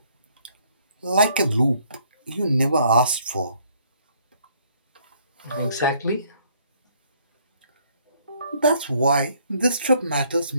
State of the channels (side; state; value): both; inverted; correlation -0.64